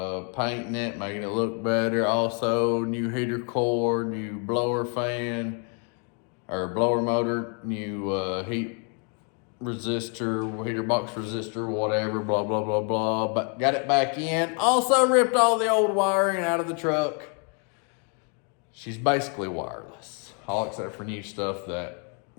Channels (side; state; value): right; quieter; 38.6 dB